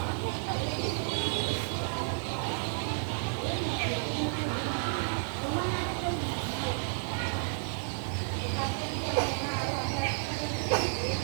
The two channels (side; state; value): left; silent; 55 dB below the other